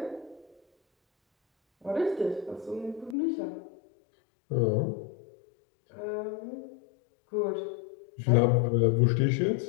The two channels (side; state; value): right; drops out; at 3.2 s